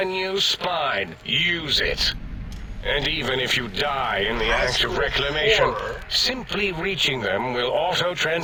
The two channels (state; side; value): identical; both; correlation 1.00